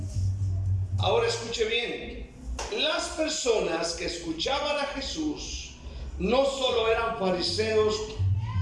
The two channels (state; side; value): identical; both; correlation 1.00